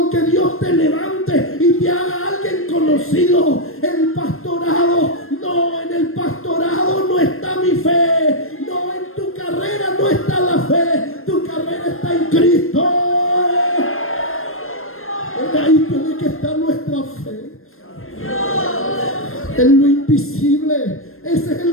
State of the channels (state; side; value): late; right; 0.61 ms